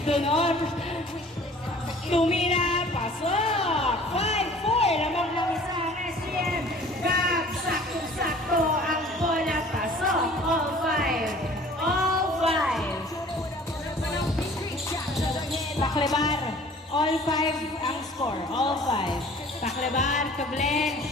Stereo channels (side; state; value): both; normal; correlation 0.49